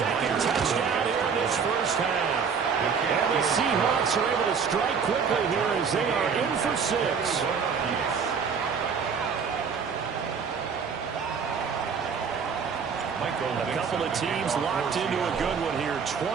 touchdown here in this first half. And the Seahawks are able to strike quickly here as they are in for 6. A couple of teams locked into a good one here.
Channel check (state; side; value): quieter; left; 6.2 dB